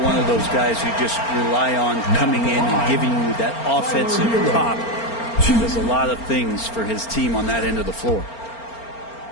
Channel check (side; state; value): right; late; 4.4 ms